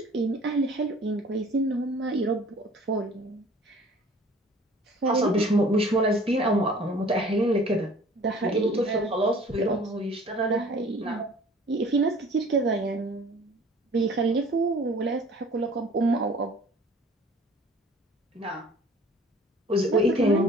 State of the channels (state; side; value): normal; both; correlation 0.50